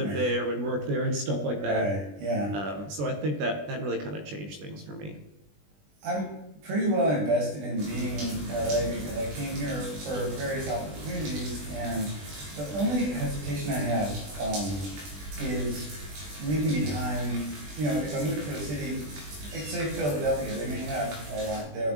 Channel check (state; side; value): late; left; 20 ms